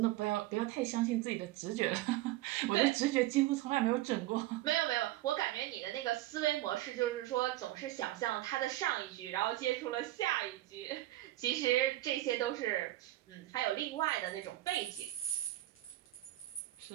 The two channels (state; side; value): quieter; left; 16.1 dB